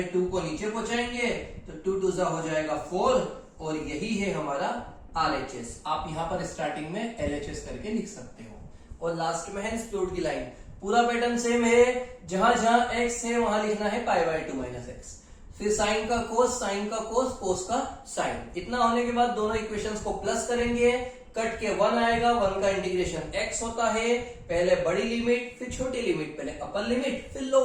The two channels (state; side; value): identical; both; correlation 1.00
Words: 2 को नीचे पहुंचाएंगे तो 2 2 हो जाएगा 4, और यही है हमारा RHS। आप यहां पर स्टार्टिंग में LHS करके लिख सकते हो, और लास्ट में है स्प्लिट की लाइन। पूरा पैटर्न सेम है, जहां जहां x है वहां लिखना है π/2 माइनस एक्स, फिर साइन का कोस, साइन का कोस, कोस का साइन। इतना होने के बाद दोनों इक्वेशंस को प्लस करेंगे, कट के 1 आएगा, 1 का इंटीग्रेशन x होता है, पहले बड़ी लिमिट फिर छोटी लिमिट, पहले अपर लिमिट फिर